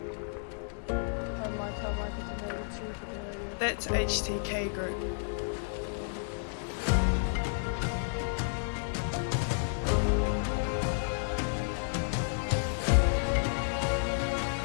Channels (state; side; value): silent; right; digital silence